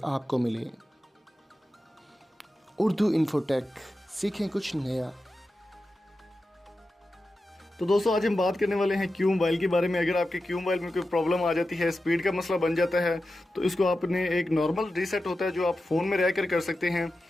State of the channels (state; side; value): normal; both; correlation 0.92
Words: आपको मिले। उर्दू इन्फोटेक, सीखें कुछ नया। तो दोस्तों आज हम बात करने वाले हैं क्यू मोबाइल के बारे में। अगर आपके क्यू मोबाइल में कोई प्रॉब्लम आ जाती है, स्पीड का मसला बन जाता है, तो इसको आपने एक नॉर्मल रीसेट होता है जो आप फ़ोन में रहकर कर सकते हैं।